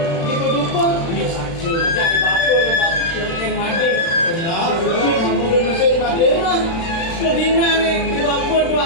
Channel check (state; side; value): late; right; 36 ms